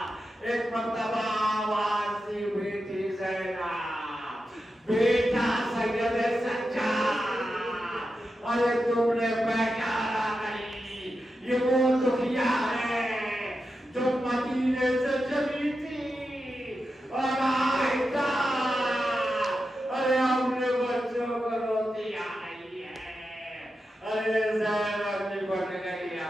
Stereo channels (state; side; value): normal; both; correlation 0.89